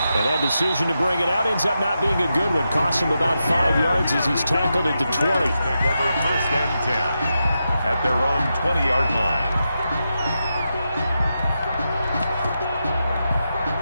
And that decision to bring it out ends up not being a good one. Costs him about 5 yards as he's tackled at the 20. Take over 1st and 10 at their own 20-yard line.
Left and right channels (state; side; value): inverted; both; correlation -0.87